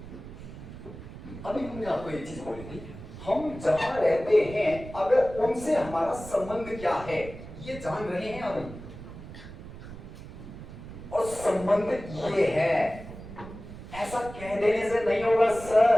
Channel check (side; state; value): right; noise; rumble, 13 dB below the sound